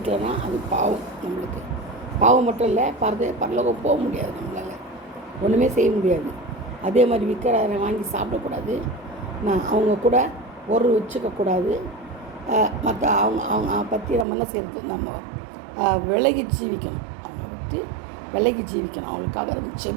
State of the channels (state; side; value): drops out; left; at 14.2 s